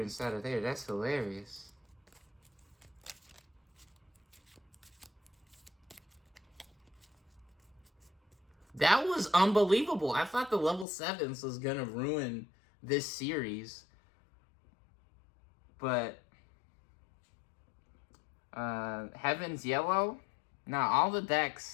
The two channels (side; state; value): right; drops out; at 10.9 s